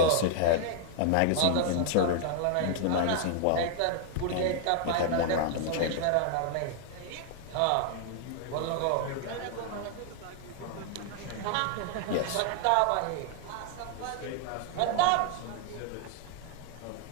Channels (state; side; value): different; both; correlation 0.00